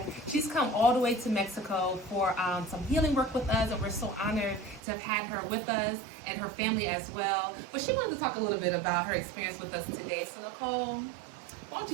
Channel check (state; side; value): drops out; left; at 4.8 s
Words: She's come all the way to Mexico for some healing work with us, and we're so honored to have had her with us and her family as well. But she wanted to talk a little bit about her experience with us today. So Nicole, why don't